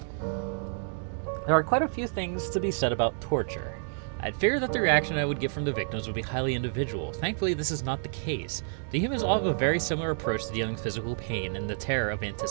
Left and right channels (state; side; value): silent; left; digital silence